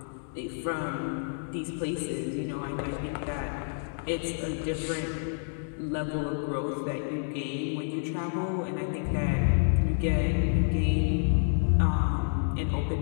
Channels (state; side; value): silent; right; digital silence